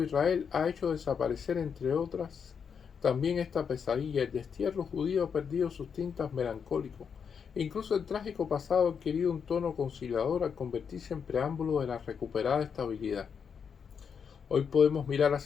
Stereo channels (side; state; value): right; quieter; 6.7 dB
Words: Israel ha hecho desaparecer, entre otras, también esta pesadilla. El destierro judío ha perdido sus tintas melancólicos. Incluso el trágico pasado ha adquirido un tono conciliador al convertirse en preámbulo de la recuperada estabilidad. Hoy podemos mirar